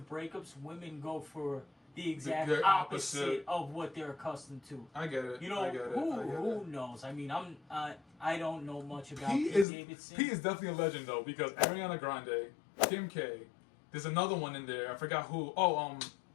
breakups, women go for the exact opposite of what they're accustomed to. I get it. Who knows? I mean, I don't know much about Pete Davidson. Pete is definitely a legend though because Ariana Grande, Kim K, there's another one in there. I forgot who.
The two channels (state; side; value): drops out; right; at 9.7 s